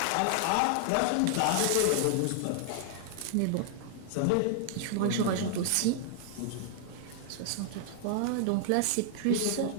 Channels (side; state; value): both; different; correlation 0.00